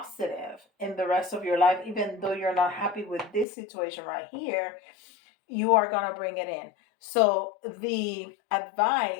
in the rest of your life, even though you're not happy with this situation right here, you are going to bring it in. So the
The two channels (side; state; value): right; drops out; at 3.5 s